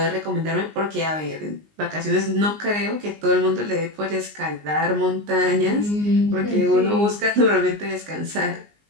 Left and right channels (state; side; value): late; left; 19 ms